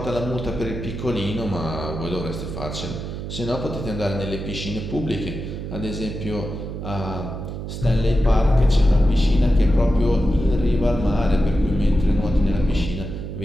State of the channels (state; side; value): noise; right; hum, 7 dB below the sound